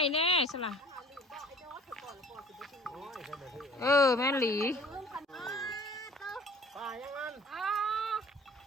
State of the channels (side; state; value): both; normal; correlation 0.50